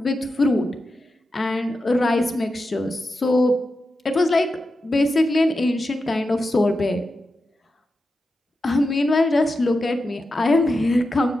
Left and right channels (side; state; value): both; normal; correlation 0.90